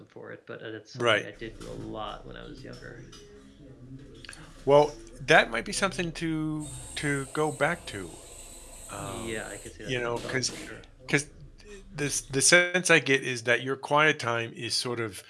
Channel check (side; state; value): both; identical; correlation 1.00